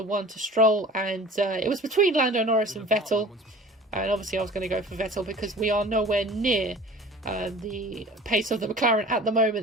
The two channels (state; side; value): normal; both; correlation 0.43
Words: one to Stroll, and it was between Lando Norris and Vettel, and obviously I was going to go for Vettel because we are nowhere near the pace of the McLaren at the